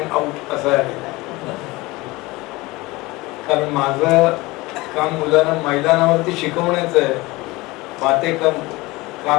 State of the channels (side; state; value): right; quieter; 21.6 dB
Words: आउट असं आहे, कारण माझं काम मुलांना मैदानावरती शिकवण्याचं आहे, बाते